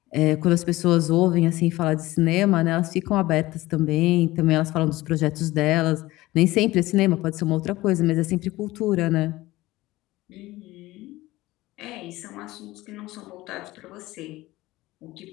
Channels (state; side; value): quieter; right; 18.3 dB